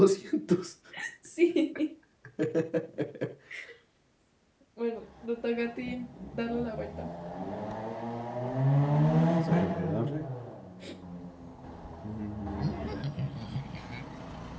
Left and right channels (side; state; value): both; identical; correlation 1.00